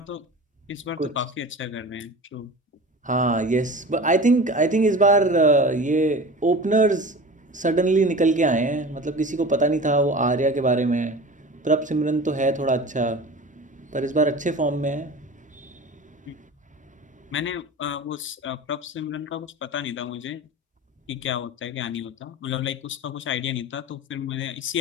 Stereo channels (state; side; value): normal; both; correlation 0.35